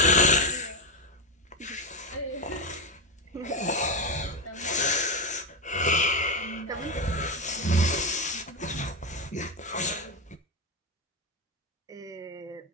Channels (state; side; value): normal; both; correlation 0.09